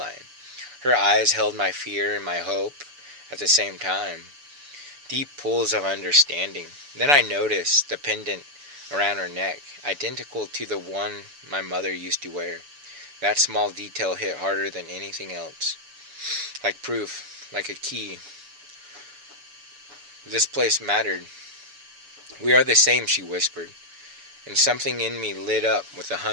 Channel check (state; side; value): late; left; 7.0 ms